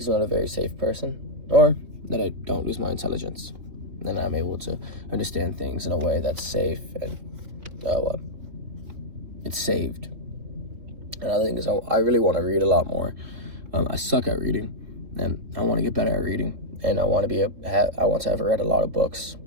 I'm not a very safe person, or that I don't lose my intelligence. Then I'm able to understand things in a way that's safe and it's saved. Another thing is I really want to read a lot more. I suck at reading, and I want to get better at reading, and I want to have read a lot of books.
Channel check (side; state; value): left; late; 3.6 ms